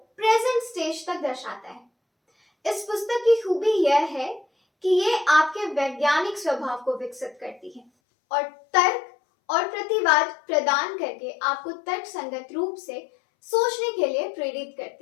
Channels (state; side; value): drops out; right; at 7.9 s